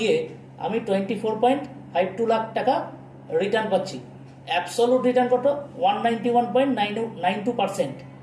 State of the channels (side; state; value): both; identical; correlation 1.00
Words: আমি 24.52 লাখ টাকা রিটার্ন পাচ্ছি। অ্যাবসোলুট রিটার্ন কত? 191.92%।